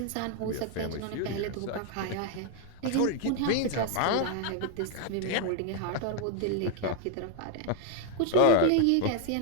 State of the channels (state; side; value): different; both; correlation 0.01